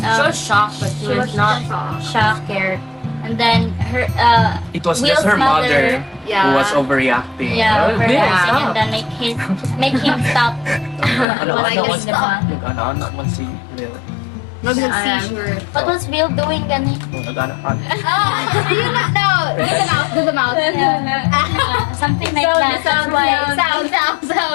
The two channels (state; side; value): drops out; right; at 11.2 s